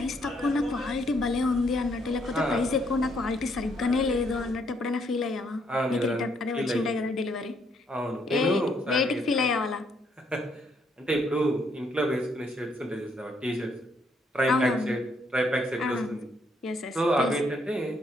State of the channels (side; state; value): both; normal; correlation 0.71